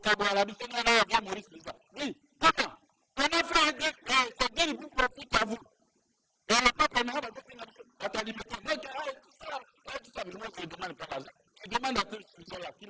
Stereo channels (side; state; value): both; identical; correlation 1.00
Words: Dis, comment? On a fait un deal, et ce deal vous profite à vous. Et le peuple maintenant va alimenter. Moi, tout ça. Mais moi, je ne demande pas l'argent. Qui demande à ce gens-là, qui